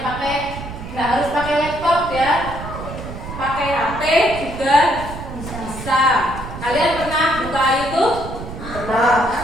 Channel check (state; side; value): noise; right; rumble, 10 dB below the sound